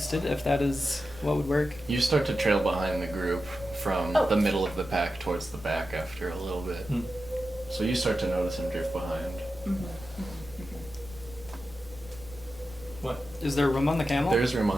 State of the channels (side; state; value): right; noise; rumble, 19 dB below the sound